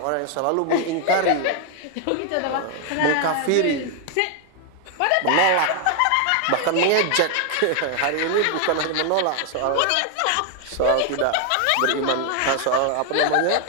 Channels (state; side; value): different; both; correlation 0.00